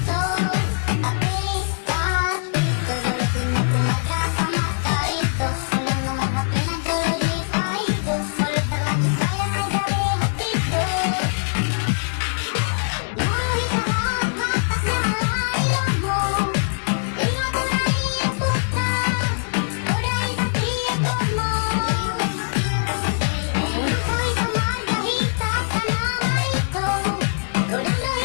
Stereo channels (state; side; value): silent; right; digital silence